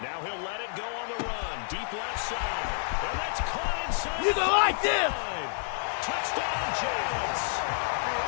Now he'll let it go on the run. Deep left side. And that's caught inside. You don't like this. Touchdown, Giants.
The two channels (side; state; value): right; silent; digital silence